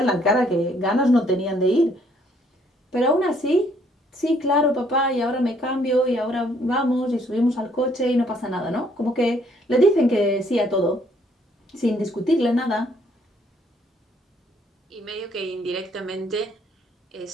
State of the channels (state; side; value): normal; both; correlation 0.66